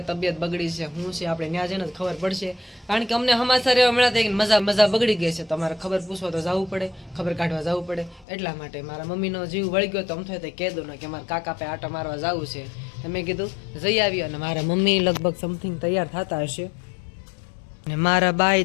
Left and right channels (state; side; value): drops out; right; at 8.2 s